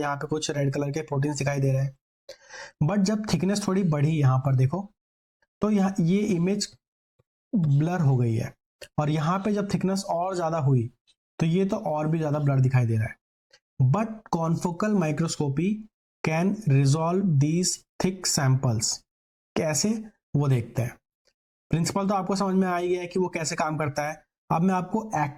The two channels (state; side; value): identical; both; correlation 1.00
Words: यहाँ पे कुछ रेड कलर के प्रोटीन्स दिखाई दे रहे हैं। बट जब थिकनेस थोड़ी बढ़ी यहाँ पर देखो, तो यहाँ ये इमेज ब्लर हो गई है, और यहाँ पे जब थिकनेस और ज्यादा हुई तो ये तो और भी ज्यादा ब्लर दिखाई दे रहा है। But confocal microscopy can resolve these thick samples. कैसे, वो देखते हैं। प्रिंसिपल तो आपको समझ में आ ही गया है कि वो कैसे काम करता है। अब मैं आपको